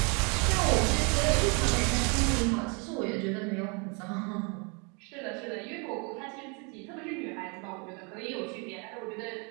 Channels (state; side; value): quieter; left; 33.4 dB